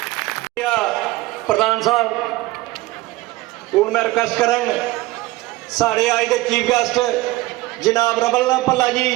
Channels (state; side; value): quieter; left; 18.8 dB